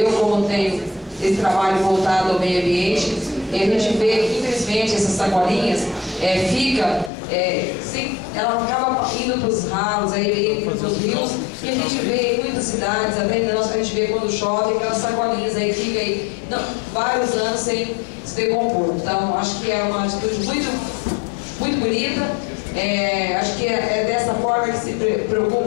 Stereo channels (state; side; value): drops out; right; at 7.1 s